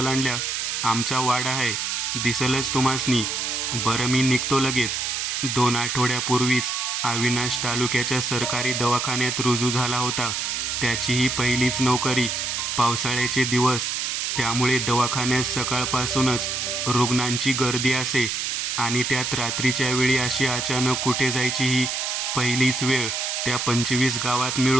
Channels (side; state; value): right; noise; hiss, 1 dB below the sound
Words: आमचा वाडा आहे, दिसलच तुम्हासनी. बरं, मी निघतो लगेच. 2 आठवड्यापूर्वीच अविनाश तालुक्याच्या सरकारी दवाखान्यात रुजू झाला होता. त्याची ही पहिलीच नोकरी. पावसाळ्याचे दिवस, त्यामुळे दवाखान्यात सकाळपासूनच रुग्णांची गर्दी असे आणि त्यात रात्रीच्या वेळी अशी अचानक कुठे जायची ही पहिलीच वेळ. त्या 25 गावात